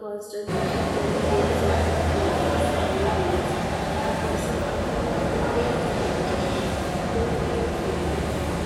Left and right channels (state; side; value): identical; both; correlation 1.00